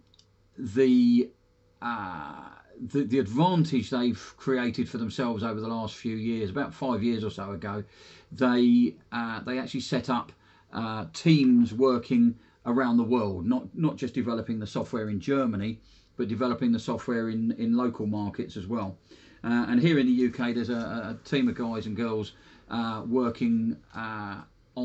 advantage they've created for themselves over the last few years, about 5 years or so ago, they actually set up teams working around the world, not just developing the software in Germany, but developing the software in local markets as well. And here in the UK, there's a team of guys and girls working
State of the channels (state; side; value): identical; both; correlation 1.00